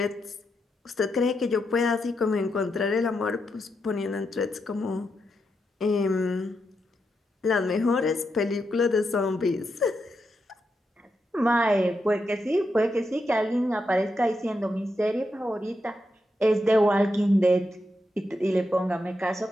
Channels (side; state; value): both; normal; correlation 0.84